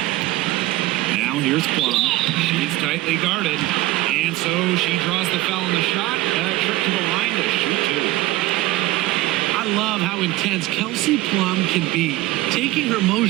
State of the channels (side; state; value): left; quieter; 17.7 dB